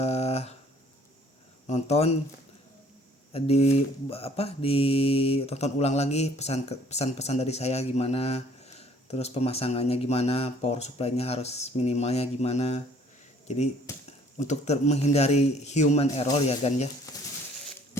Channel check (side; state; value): both; normal; correlation 0.58